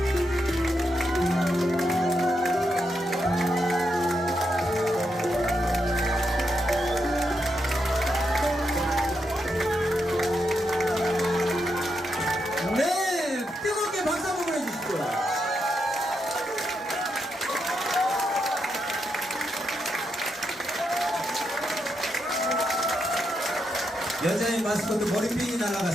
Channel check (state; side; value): normal; both; correlation 0.82